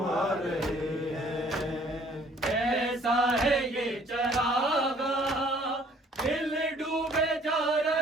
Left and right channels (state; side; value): normal; both; correlation 0.58